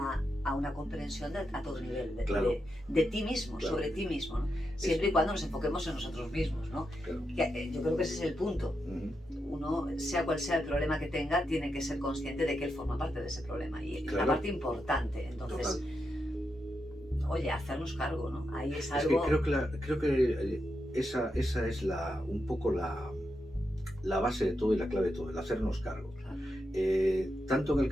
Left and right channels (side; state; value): both; normal; correlation 0.85